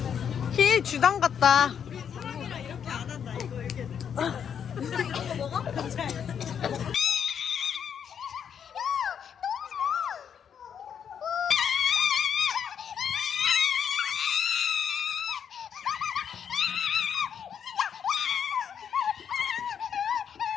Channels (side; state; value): right; quieter; 8.0 dB